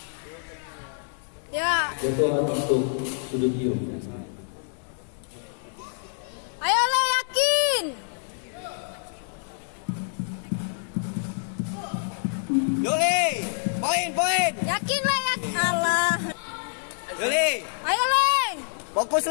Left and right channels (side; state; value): right; silent; 60 dB below the other